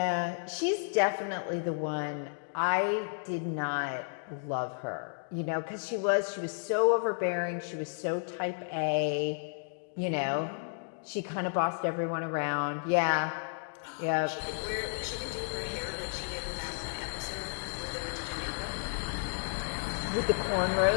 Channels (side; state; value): right; silent; digital silence